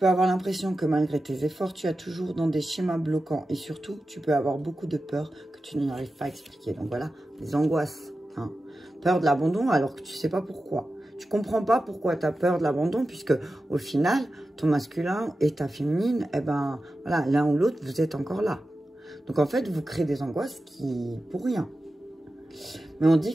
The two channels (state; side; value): normal; both; correlation 0.92